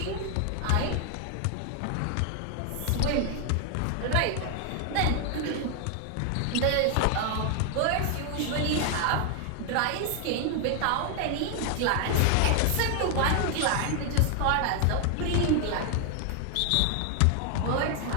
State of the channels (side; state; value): both; different; correlation 0.00